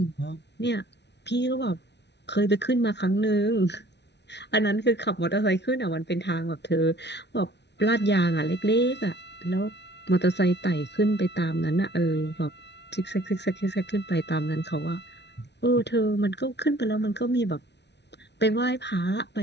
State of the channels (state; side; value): late; right; 0.50 ms